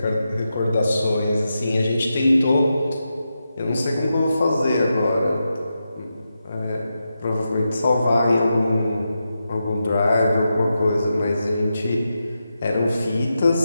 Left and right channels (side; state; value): both; inverted; correlation -0.88